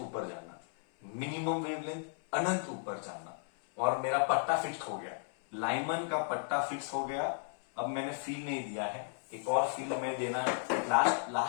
जाना, मिनिमम वेवलेंथ अनंत ऊपर जाना. और मेरा पट्टा फिक्स हो गया, लाइमन का पट्टा फिक्स हो गया. अब मैंने फील नहीं दिया है, एक और फील में देना है,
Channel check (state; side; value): silent; right; 55 dB below the other